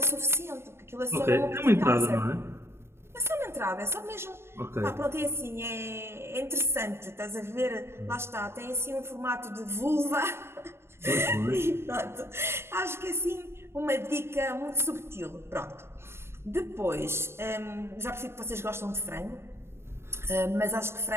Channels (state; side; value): late; left; 0.12 ms